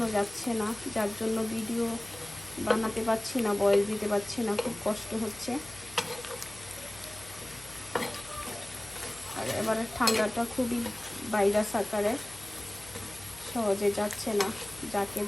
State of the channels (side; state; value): left; noise; hum, 20 dB below the sound